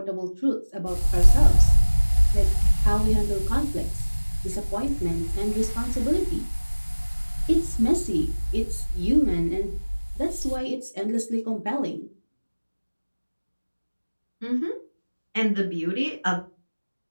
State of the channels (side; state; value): both; inverted; correlation -1.00